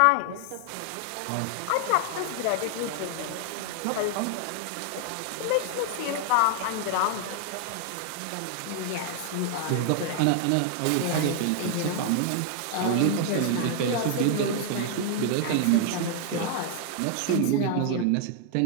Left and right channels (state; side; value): different; both; correlation 0.00